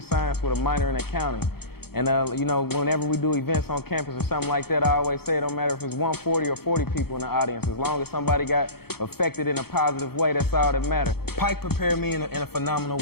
science with a minor in accounting. And you know, whenever we do events on campus or something like that, I always say it don't matter if it's 140 or 40 people in the audience. As long as somebody got affected in a positive way, that's all that matters. Pike prepared me in a phenomenal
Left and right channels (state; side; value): late; right; 0.96 ms